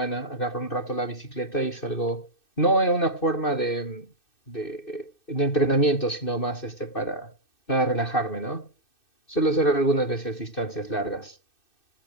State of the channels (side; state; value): right; late; 2.6 ms